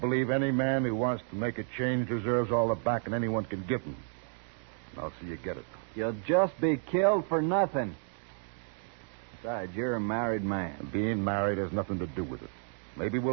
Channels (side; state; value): left; silent; 57 dB below the other